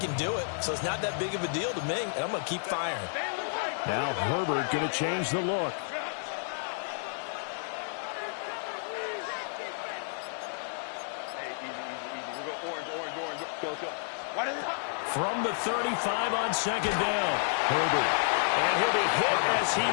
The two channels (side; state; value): right; silent; digital silence